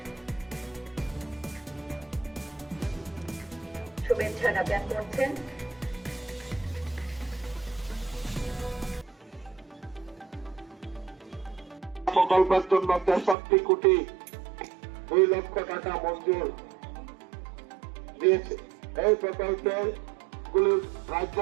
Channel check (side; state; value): left; drops out; at 13.4 s